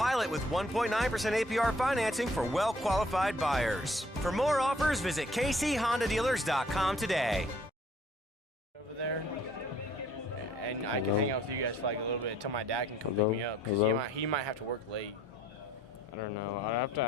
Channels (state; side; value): normal; both; correlation 0.59